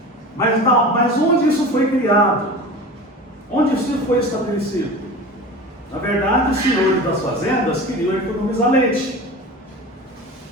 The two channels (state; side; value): normal; both; correlation 0.34